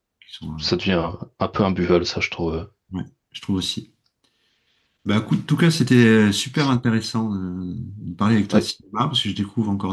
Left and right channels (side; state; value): both; identical; correlation 1.00